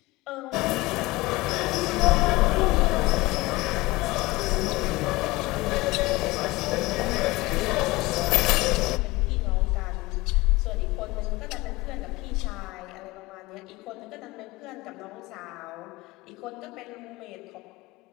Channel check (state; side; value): quieter; right; 21.5 dB